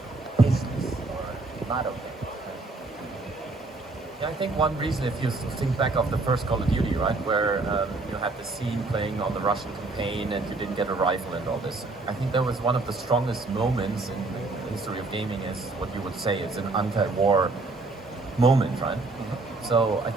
business or not okay? I think one reason, if you think back of the first Call of Duty, right, where you had the scene playing on the Russian campaign and you didn't get a rifle and all this, I think that was one of the strongest moments in the history of gaming, is what you would say is an anti-war moment, right? So I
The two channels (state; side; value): quieter; left; 3.4 dB